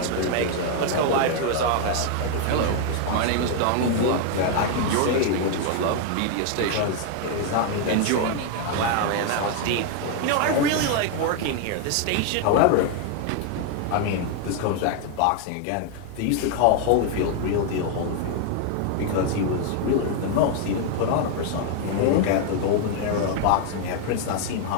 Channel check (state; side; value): different; both; correlation 0.00